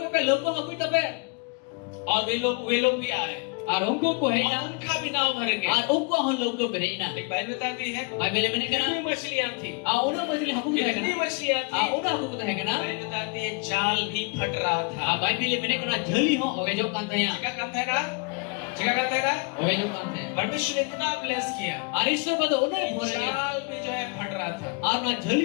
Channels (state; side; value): quieter; right; 32.4 dB